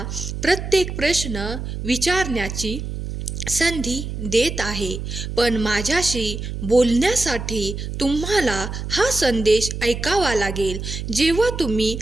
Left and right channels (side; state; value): right; noise; hum, 6 dB below the sound